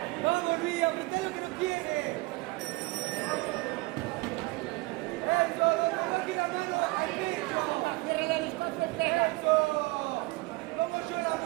Vamos, Luis, apretado que no quiere. Eso, donde no quiere la mano, baja el pecho. Cierra la distancia. Eso. Vamos yo la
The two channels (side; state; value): left; quieter; 22.8 dB